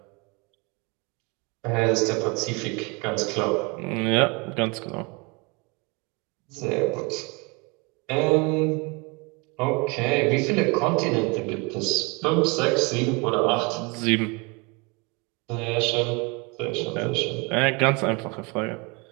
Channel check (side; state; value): left; quieter; 29.2 dB